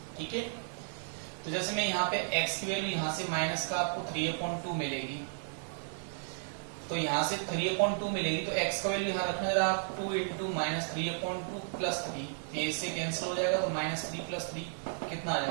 ठीक है, तो जैसे मैं यहाँ पे x की वैल्यू यहाँ से माइनस का आपको 3/2 मिलेगी, तो यहाँ से 3/2 मिलेगी, तो x का वैल्यू यहाँ रखना जरा आप 2 इंटू -3/2 प्लस 3, ये इससे कैंसिल हो जाएगा, तो -3 प्लस 3 कितना आ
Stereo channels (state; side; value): silent; left; digital silence